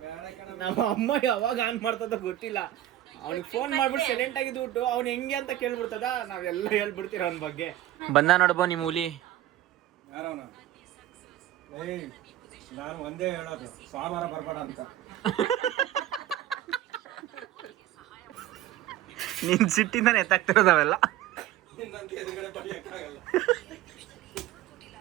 ನಮ್ಮ ಅಮ್ಮ ಯಾವಾಗ ಆನ್ ಮಾಡ್ತದ ಗೊತ್ತಿಲ್ಲ. ಅವ್ನಿಗೆ ಫೋನ್ ಮಾಡ್ಬಿಟ್ಟು ಸೈಲೆಂಟ್ ಆಗಿದ್ಬಿಟ್ಟು ಅವ್ನು ಹೆಂಗೆ ಅಂತ ಕೇಳ್ಬಿಡ್ತದ, ನಾವೆಲ್ಲ ಹೇಳ್ಬಿಡ್ತೀರ ಅವನ ಬಗ್ಗೆ. ಬಂದ ನೋಡ್ಬೋ ನಿಮ್ಮ ಹುಲಿ. ಯಾರವನ? ಏಯ್, ನಾನು ಒಂದೇ ಹೇಳೋದು, ಸೋಮವಾರ ಬರ್ಬೇಡ ಅಂತ. ನಿನ್ ಸಿಟ್ಟಿಂದಾನೆ ಎತ್ತಾಗ್ತಿರೋದವೆಲ್ಲ. ನಿನ್ನಂತ ಎದುರುಗಡೆ ಬಡಿಯಕ್ಕಾಗಲ್ಲ.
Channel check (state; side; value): quieter; left; 13.5 dB